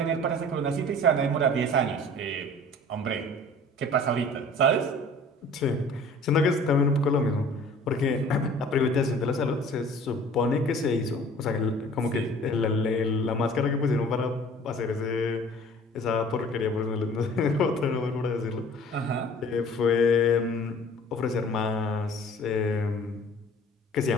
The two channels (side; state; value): both; normal; correlation 0.48